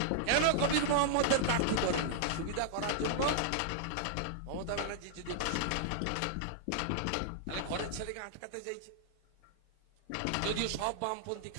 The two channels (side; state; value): both; different; correlation -0.01